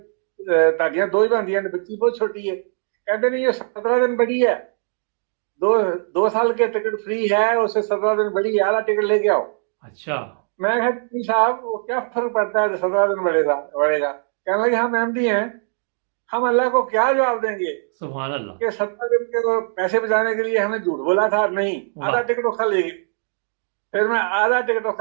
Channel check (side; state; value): left; silent; 58 dB below the other